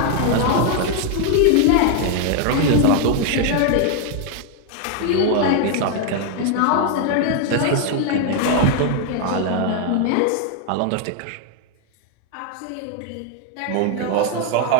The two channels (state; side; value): different; both; correlation 0.00